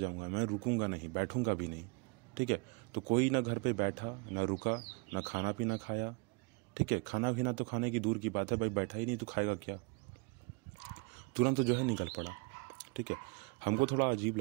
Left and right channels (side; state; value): left; quieter; 30.9 dB